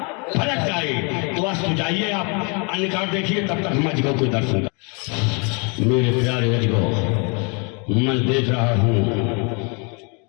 फलक जाए। तो बस तो जाइए, आप अन्य कार्य देखिए, तब तक हम अजगो को दर्शन कर। मेरे प्यारे अजगो, मैं देख रहा हूं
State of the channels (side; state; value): right; quieter; 34.1 dB